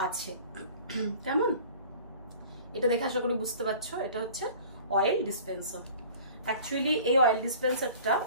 আছে। কেমন, এটা দেখে আশা করি বুঝতে পারছো, এটা হচ্ছে অয়েল ডিসপেন্সার। অ্যাকচুয়ালি এই অয়েল ডিসপেন্সারটা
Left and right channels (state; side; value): inverted; both; correlation -0.46